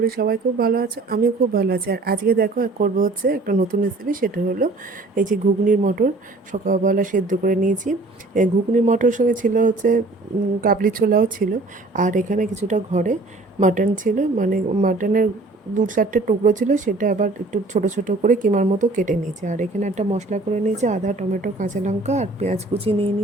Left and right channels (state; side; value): quieter; left; 3.2 dB